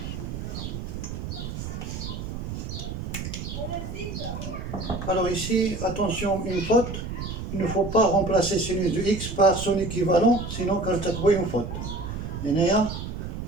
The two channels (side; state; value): right; noise; rumble, 6 dB below the sound